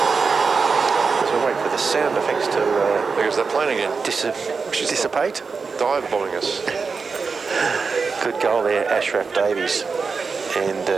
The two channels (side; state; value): left; quieter; 4.9 dB